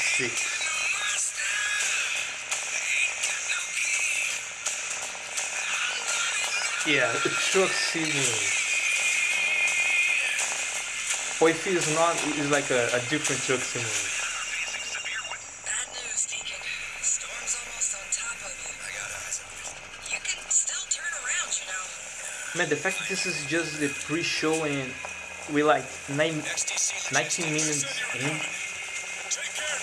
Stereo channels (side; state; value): both; identical; correlation 1.00